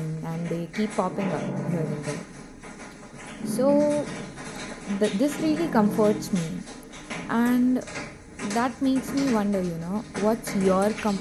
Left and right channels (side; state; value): both; identical; correlation 1.00